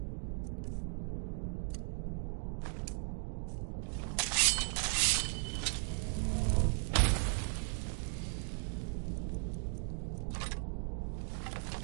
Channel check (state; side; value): silent; left; 53 dB below the other